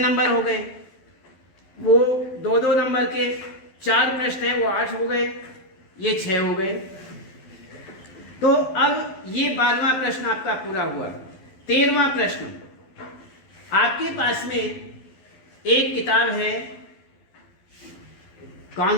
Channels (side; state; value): right; late; 12 ms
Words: हो गए। वो 2-2 नंबर के 4 प्रश्न हैं, वो 8 हो गए, ये 6 हो गए। तो अब ये 12वां प्रश्न आपका पूरा हुआ। 13वां प्रश्न, आपके पास में एक किताब है, कौन